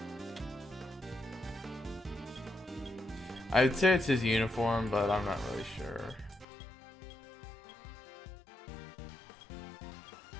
I'd say it's his uniform, but I'm not really sure.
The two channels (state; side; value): drops out; right; at 6.5 s